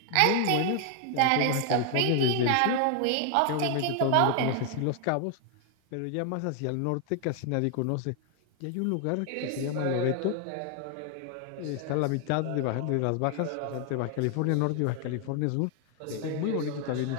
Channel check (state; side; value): different; both; correlation 0.00